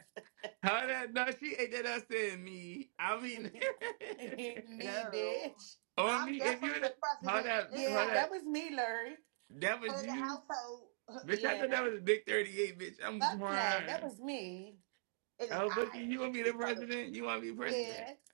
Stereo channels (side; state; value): left; silent; digital silence